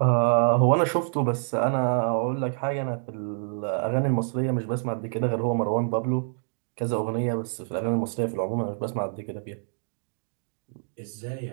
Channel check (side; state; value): left; silent; 60 dB below the other